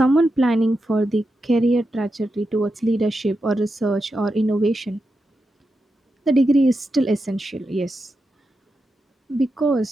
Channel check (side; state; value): both; normal; correlation 0.88